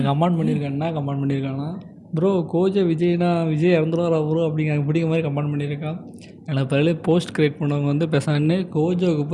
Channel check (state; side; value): identical; both; correlation 1.00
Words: கமெண்ட் பண்ணியிருக்கான்னா ப்ரோ கோஜோ விஜய் இறந்துருவாரா ப்ரோ அப்படிங்கிற மாதிரி கமெண்ட் பண்ணியிருக்கான். எனக்கு பதில் போஸ்ட் க்ரியேட் பண்ணவங்க வந்து பேசான்னு கோஜோவுக்கு